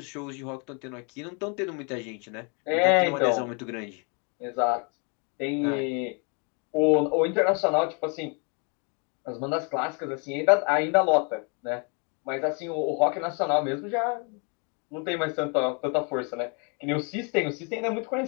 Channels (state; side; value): quieter; right; 35.4 dB